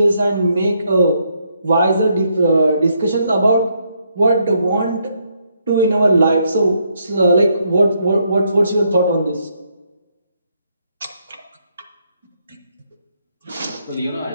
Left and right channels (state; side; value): inverted; both; correlation -0.75